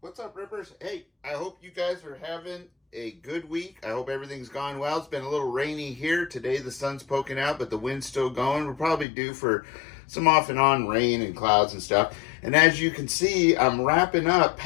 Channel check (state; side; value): drops out; right; at 9.1 s